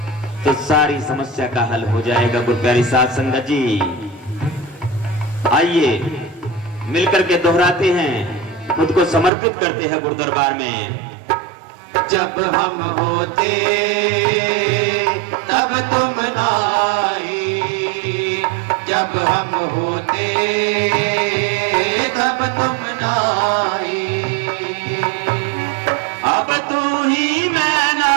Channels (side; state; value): left; drops out; at 9.3 s